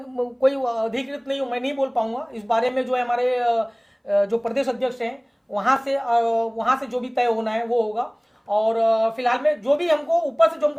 कोई अधिकृत नहीं हूँ, मैं नहीं बोल पाऊंगा इस बारे में। जो है हमारे जो प्रदेश अध्यक्ष हैं, वहां से जो भी तय होना है वो होगा। और फिलहाल में जो भी हमको ऊपर से जो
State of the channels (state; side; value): identical; both; correlation 1.00